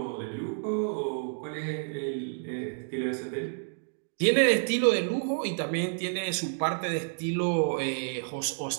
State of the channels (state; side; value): silent; left; digital silence